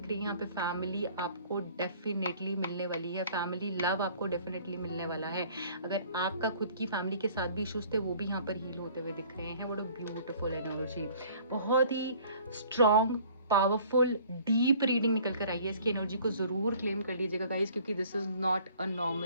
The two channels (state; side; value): inverted; both; correlation -0.53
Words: रही है। यहाँ पे फैमिली आपको डेफिनेटली मिलने वाली है, फैमिली लव आपको डेफिनेटली मिलने वाला है। अगर आपका खुद की फैमिली के साथ भी इश्यूज थे, वो भी यहाँ पर हील होते हुए दिख रहे हैं। व्हाट अ ब्यूटीफुल एनर्जी, बहुत ही स्ट्रॉन्ग, पावरफुल, डीप रीडिंग निकल कर आई है। इसकी एनर्जी को जरूर क्लेम कर लीजिएगा गाइज, क्योंकि this is not a